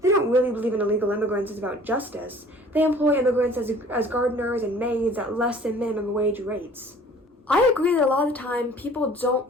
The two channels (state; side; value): normal; both; correlation 0.50